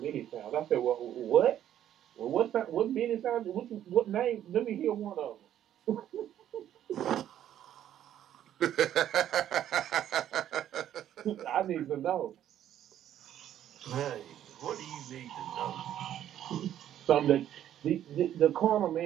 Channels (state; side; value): quieter; left; 11.1 dB